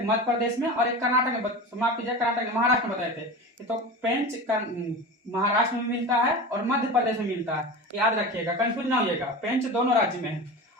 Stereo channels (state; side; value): normal; both; correlation 0.30